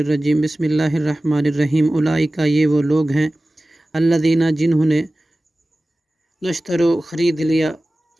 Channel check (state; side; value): normal; both; correlation 0.96